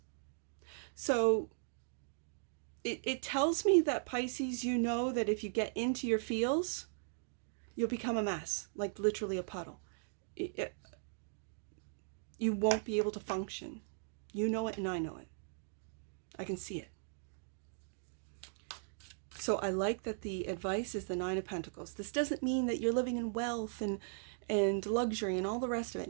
So it tells me that, Pisces, you know that if you get into your feels, you'll become a mess, like literally a puddle. You won't be able to function. You know it and I know it. I can see it. So I like that the advice is the Nine of Pentacles. This doesn't mean that you're living in wealth and luxury and all the rest of it.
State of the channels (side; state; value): left; silent; digital silence